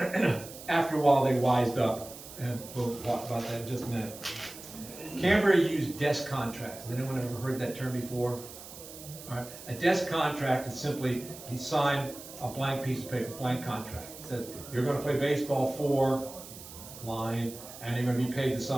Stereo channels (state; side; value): noise; right; hiss, 15 dB below the sound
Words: After a while, they wised up. And we'll talk about that in just a minute. Cambria used desk contracts. Has anyone ever heard that term before? All right. A desk contract is simply you sign a blank piece of paper, blank contract. It says you're going to play baseball for line, and you're going to be paid the